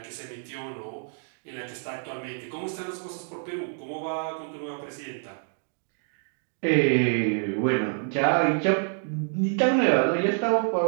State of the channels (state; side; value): silent; left; 58 dB below the other